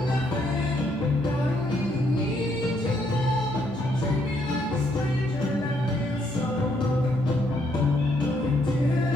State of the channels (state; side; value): normal; both; correlation 0.72